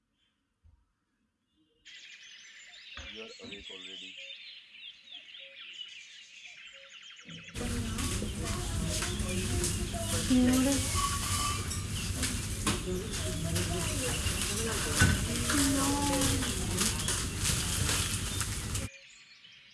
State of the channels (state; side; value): identical; both; correlation 1.00